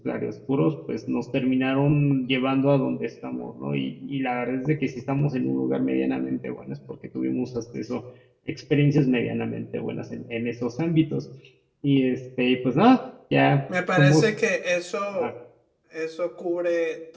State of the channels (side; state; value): both; identical; correlation 1.00